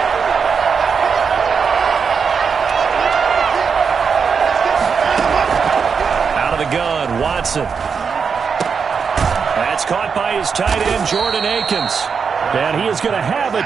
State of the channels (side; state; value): left; quieter; 6.0 dB